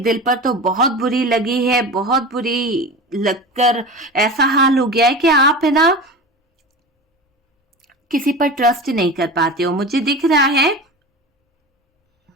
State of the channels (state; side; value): normal; both; correlation 0.30